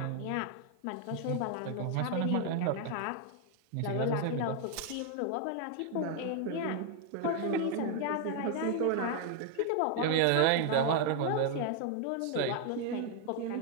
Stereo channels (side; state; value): both; different; correlation 0.00